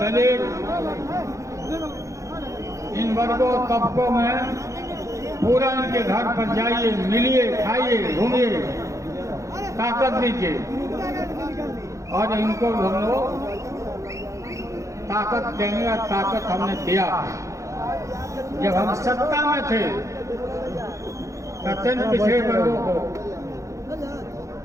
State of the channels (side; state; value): left; late; 0.15 ms